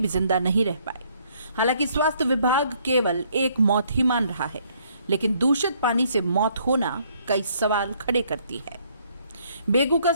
जिंदा नहीं रह पाए। हालांकि स्वास्थ्य विभाग केवल एक मौत ही मान रहा है, लेकिन दूषित पानी से मौत होना कई सवाल खड़े करती है। बेगू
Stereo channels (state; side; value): inverted; both; correlation -0.66